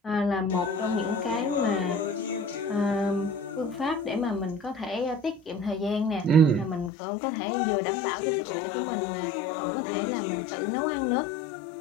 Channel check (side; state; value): right; drops out; at 6.9 s